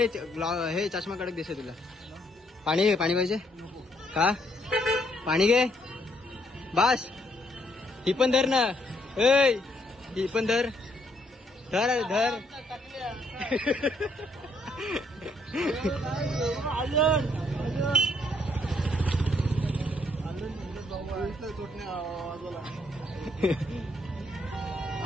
हे चष्मा कडक दिसे तुला. पाणी घे, पाणी पाहिजे का? पाणी घे बस. ही पण धर ना. ही पण धर.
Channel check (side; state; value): both; normal; correlation 0.71